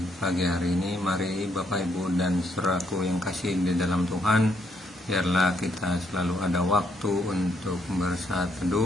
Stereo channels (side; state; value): both; normal; correlation 0.73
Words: pagi hari ini. Mari Bapak Ibu dan saudaraku yang kasih di dalam Tuhan, biarlah kita selalu ada waktu untuk bersaat